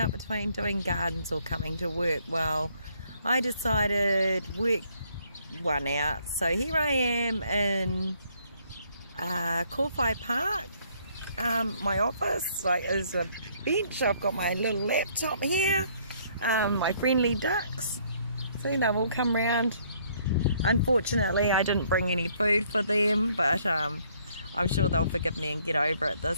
between doing gardens or coming to work. Well, I decided work one out. So here I am in Kowhai Park. My office is a bench. I've got my little laptop here, my friendly ducks. See, they've all come round. Unfortunately, I didn't bring any food for them, but I'm sure they'll forgive me and get over it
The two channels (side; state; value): both; inverted; correlation -0.65